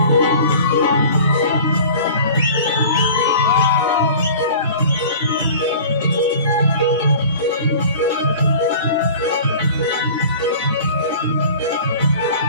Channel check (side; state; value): both; inverted; correlation -0.42